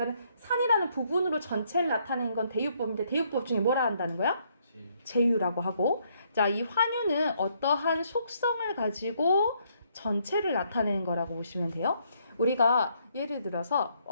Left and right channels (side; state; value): both; inverted; correlation -0.71